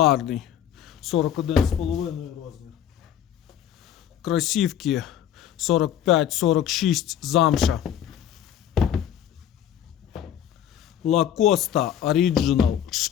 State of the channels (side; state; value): right; quieter; 9.9 dB